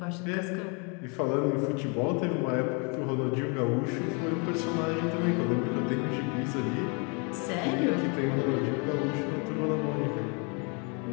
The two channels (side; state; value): right; quieter; 34.4 dB